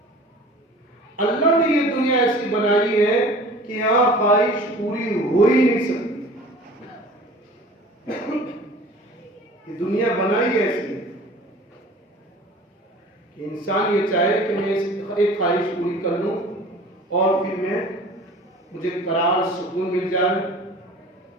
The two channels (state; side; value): normal; both; correlation 0.44